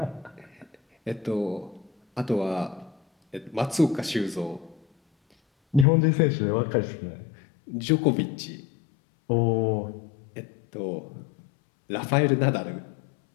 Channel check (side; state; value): right; drops out; at 5.9 s